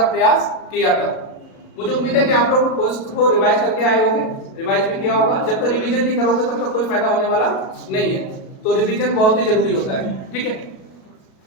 प्रयास किया था। मुझे उम्मीद है कि आप लोग उसको रिवाइज करके आए होंगे, रिवाइज भी किया होगा। जब तक रिवीजन नहीं करोगे तब तक कोई फायदा होने वाला नहीं है, तो रिवीजन बहुत ही जरूरी होता है। ठीक है,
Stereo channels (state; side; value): late; right; 37 ms